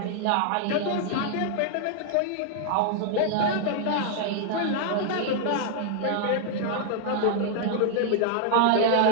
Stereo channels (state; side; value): different; both; correlation 0.00